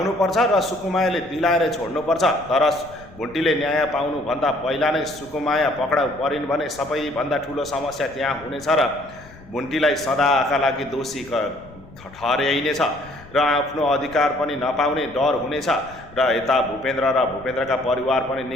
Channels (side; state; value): left; noise; rumble, 21 dB below the sound